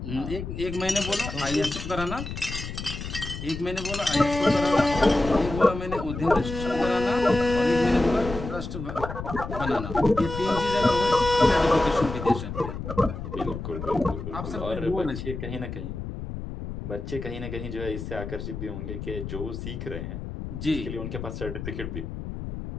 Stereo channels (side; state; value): left; noise; rumble, 7 dB below the sound